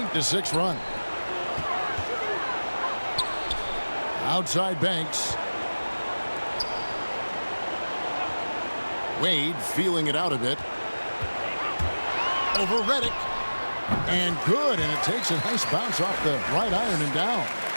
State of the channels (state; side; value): inverted; both; correlation -1.00